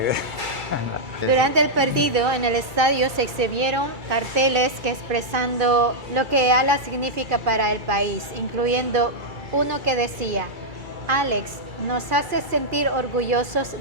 Durante el partido en el estadio se exhibieron carteles que expresando lo que ALA significa para el país, incluyendo uno que decía: "Alex, nos hace sentir orgullosos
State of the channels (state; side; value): late; left; 2.3 ms